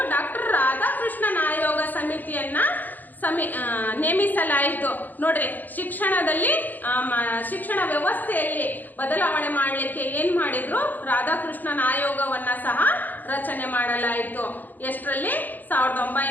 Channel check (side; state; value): right; late; 0.085 ms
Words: ಡಾಕ್ಟರ್ ರಾಧಾಕೃಷ್ಣನ್ ಆಯೋಗ ಸಮಿತಿಯನ್ನ ನೇಮಿಸಲಾಯಿತು. ನೋಡ್ರಿ, ಶಿಕ್ಷಣ ವ್ಯವಸ್ಥೆಯಲ್ಲಿ ಬದಲಾವಣೆ ಮಾಡಲಿಕ್ಕೆ ಏನ್ ಮಾಡಿದ್ರು? ರಾಧಾಕೃಷ್ಣನ್ ಆಯೋಗವನ್ನ ಸಹ ರಚನೆ ಮಾಡಲಾಯಿತು. ಎಷ್ಟರಲ್ಲಿ?